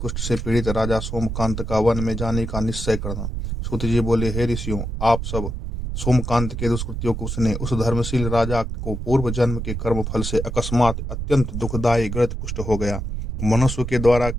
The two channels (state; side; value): noise; right; rumble, 4 dB below the sound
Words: से पीड़ित राजा सोमकांत का वन में जाने का निश्चय करना। सूत जी बोले, हे ऋषियों, आप सब सोमकांत के दुष्कृत्यों को सुने। उस धर्मशील राजा को पूर्व जन्म के कर्म फल से अकस्मात अत्यंत दुखदायी गलित कुष्ठ हो गया। मनुष्य के द्वारा